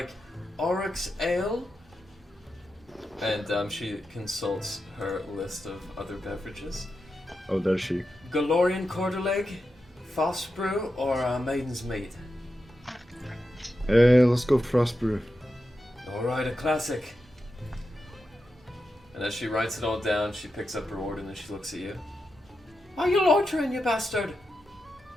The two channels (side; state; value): both; normal; correlation 0.89